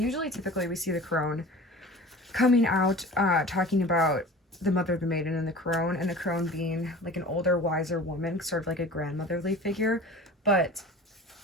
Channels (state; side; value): normal; both; correlation 0.40